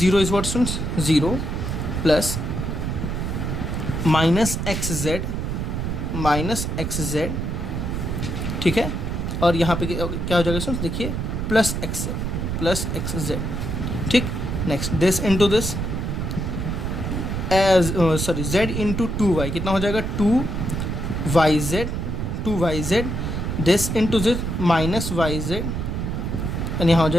is what soon 0 plus minus X Z, ठीक है। और यहाँ पे क्या हो जाएगा सुन देखिए प्लस एक्स जेड, ठीक। Next this into this as z into 2y कितना हो जाएगा 2yz, this into this minus Y Z and यहाँ हो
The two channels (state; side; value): noise; right; rumble, 2 dB below the sound